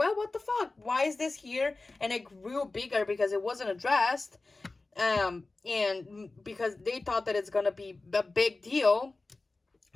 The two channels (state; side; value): quieter; right; 3.4 dB